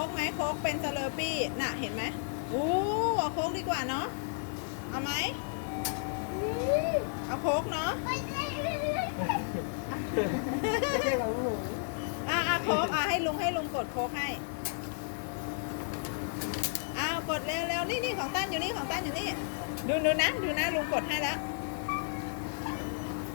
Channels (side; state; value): right; silent; 56 dB below the other